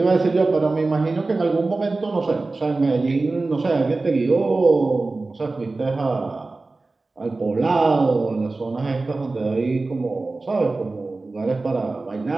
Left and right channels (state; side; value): quieter; left; 3.4 dB